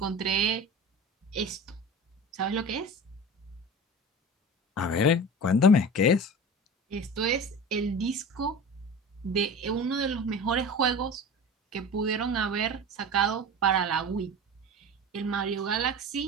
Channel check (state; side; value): normal; both; correlation 0.33